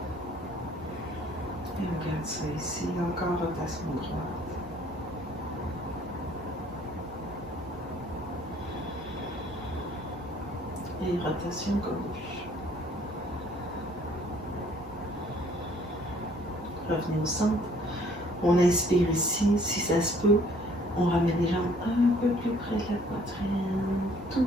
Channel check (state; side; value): normal; both; correlation 0.59